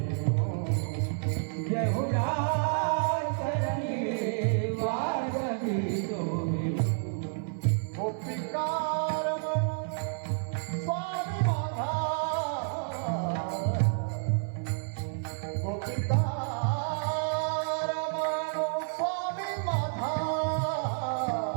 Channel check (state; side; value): silent; left; 58 dB below the other